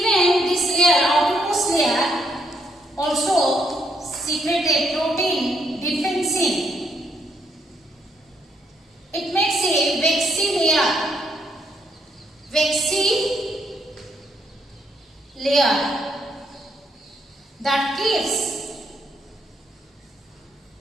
this layer, outermost layer, also secrete a protein defensine. It makes a waxy layer that keeps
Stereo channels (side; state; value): both; normal; correlation 0.74